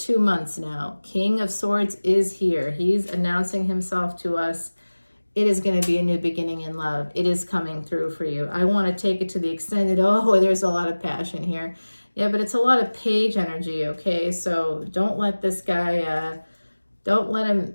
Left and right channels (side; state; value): both; inverted; correlation -1.00